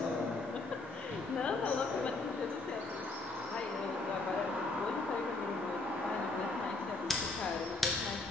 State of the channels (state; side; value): quieter; right; 3.5 dB